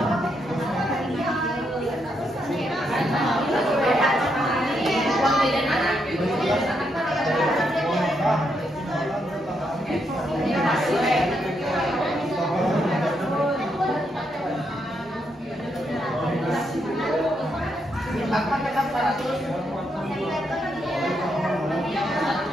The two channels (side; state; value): both; normal; correlation 0.79